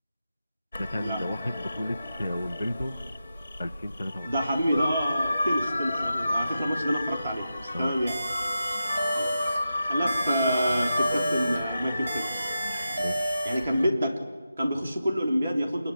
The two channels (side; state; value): both; inverted; correlation -0.89